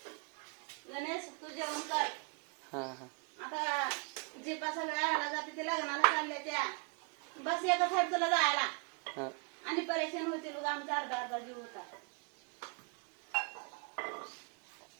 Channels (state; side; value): quieter; left; 33.5 dB